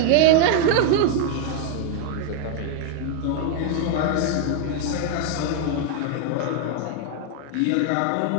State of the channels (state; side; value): different; both; correlation 0.00